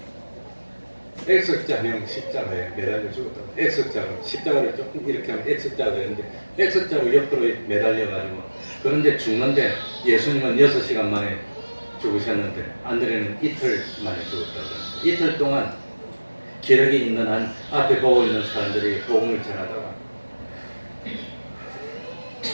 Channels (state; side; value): inverted; both; correlation -1.00